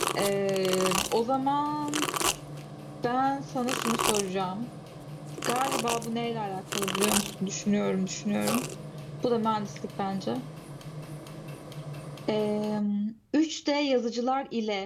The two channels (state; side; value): identical; both; correlation 1.00